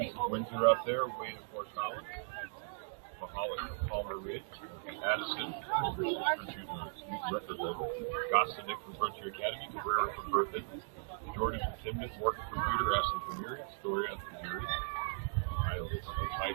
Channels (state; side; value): silent; left; digital silence